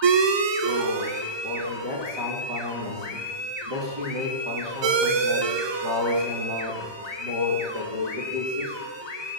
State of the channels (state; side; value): late; left; 1.2 ms